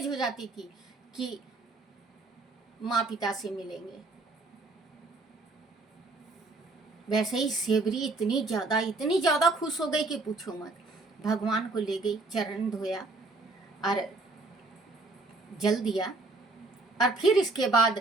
हो जाती थी कि माँ पिता से मिलेंगे। वैसे ही सेवरी इतनी ज़्यादा खुश हो गई कि पूछो मत। भगवान को ले गई, चरण धोया और जल दिया, और फिर इसके बाद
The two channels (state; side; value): quieter; left; 3.3 dB